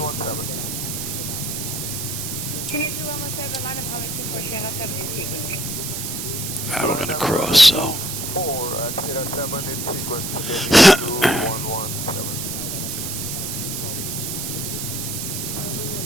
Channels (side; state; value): right; noise; hiss, 4 dB below the sound